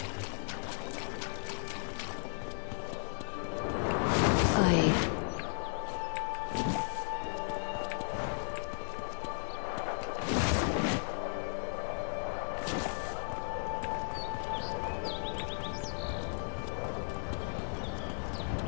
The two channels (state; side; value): silent; right; digital silence